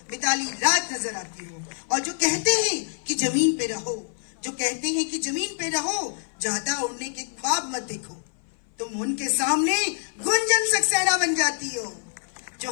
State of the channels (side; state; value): right; silent; 57 dB below the other